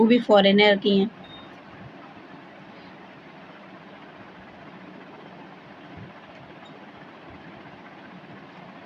भी फॉरेनर की हैं।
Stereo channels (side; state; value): both; identical; correlation 1.00